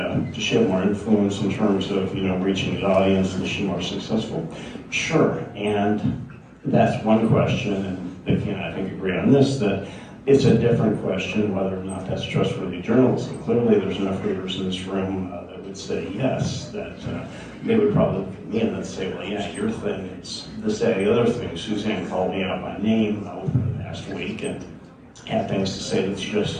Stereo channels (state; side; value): identical; both; correlation 1.00